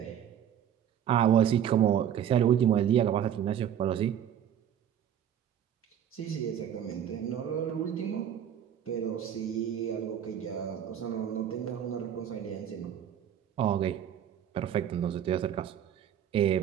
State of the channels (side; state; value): left; quieter; 9.7 dB